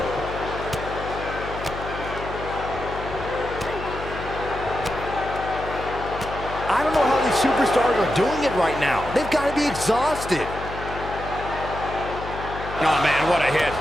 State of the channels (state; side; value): noise; left; hum, 10 dB below the sound